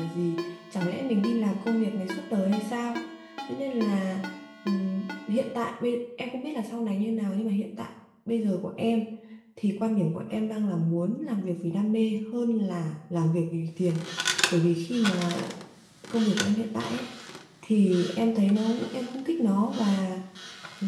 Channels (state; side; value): identical; both; correlation 1.00